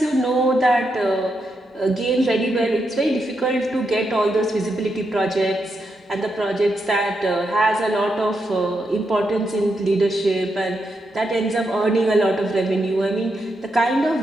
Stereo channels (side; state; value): both; normal; correlation 0.83